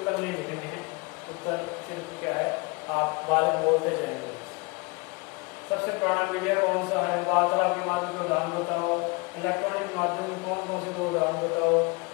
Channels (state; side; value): quieter; right; 28.9 dB